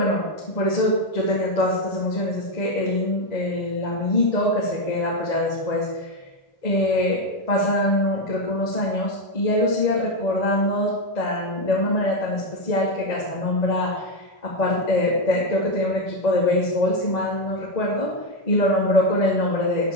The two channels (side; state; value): right; late; 1.7 ms